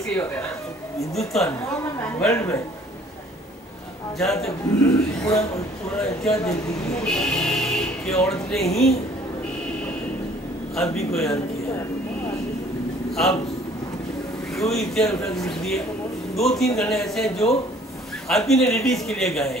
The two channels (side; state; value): both; normal; correlation 0.56